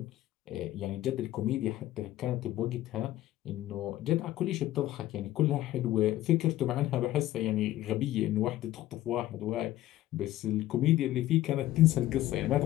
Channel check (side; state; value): right; quieter; 14.7 dB